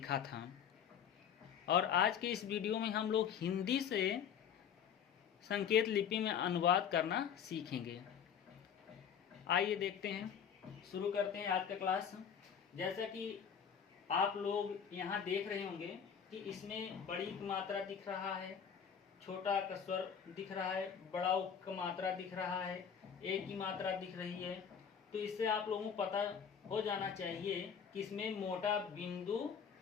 था और आज के इस वीडियो में हम लोग हिंदी से संकेत लिपि में अनुवाद करना सीखेंगे। आइए देखते हैं, शुरू करते हैं आज का क्लास। जैसा कि आप लोग यहाँ देख रहे होंगे कि इसमें बड़ी की मात्रा दिख रहा है, छोटा का स्वर दिख रहा है, बड़ा का मात्रा दिख रहा है, एक की मात्रा दिख रही है। तो इससे आप लोगों को पता हो जाना चाहिए कि इसमें मोटा बिंदु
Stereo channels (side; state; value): right; quieter; 7.7 dB